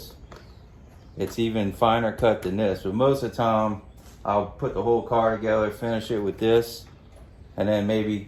It's even finer cut than this, but most of the time, I'll put the whole car together, finish it with this, and then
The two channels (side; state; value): both; identical; correlation 1.00